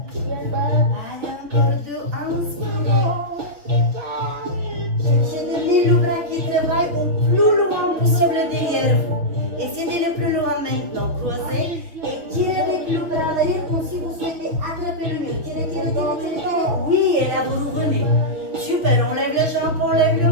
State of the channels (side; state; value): left; late; 5.9 ms